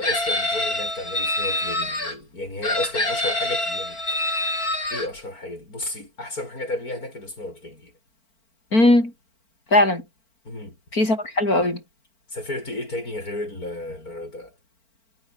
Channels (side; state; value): right; late; 4.4 ms